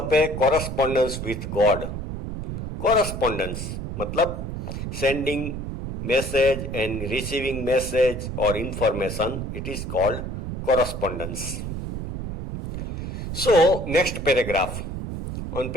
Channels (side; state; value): right; noise; rumble, 5 dB below the sound